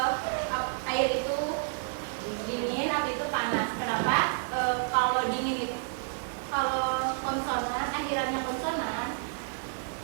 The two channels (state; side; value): silent; left; 56 dB below the other